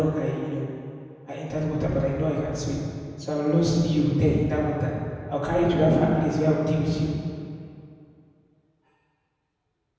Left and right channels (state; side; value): identical; both; correlation 1.00